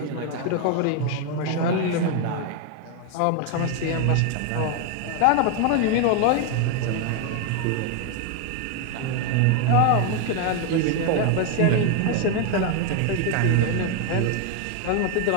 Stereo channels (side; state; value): both; different; correlation 0.01